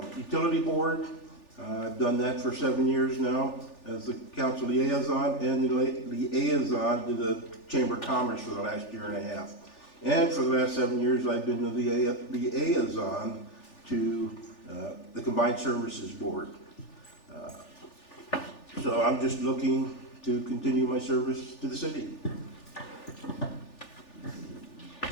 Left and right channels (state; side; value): late; right; 3.4 ms